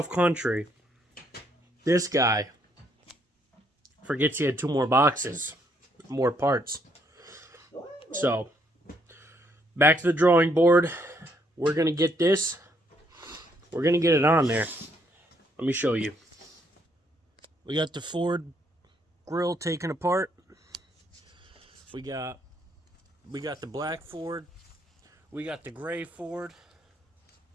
country. This guy forgets he had 2 more boxes, more parts. So, back to the drawing board. We're going to get this. We're going to get it on there. Let me show you. We got the Ford grill taken apart. We got the black Ford. We got the gray Ford.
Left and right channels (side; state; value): both; normal; correlation 0.71